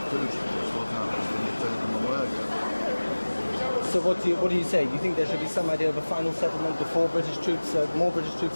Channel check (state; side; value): inverted; both; correlation -1.00